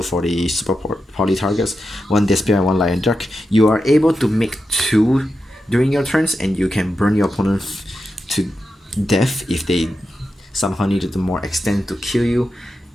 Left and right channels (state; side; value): normal; both; correlation 0.89